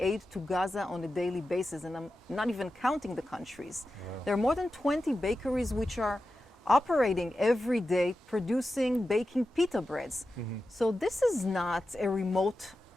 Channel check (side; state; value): both; normal; correlation 0.92